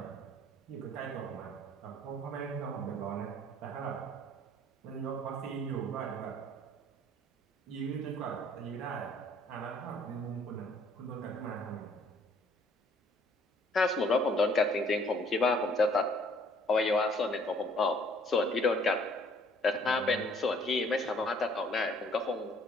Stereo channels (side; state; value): both; normal; correlation 0.59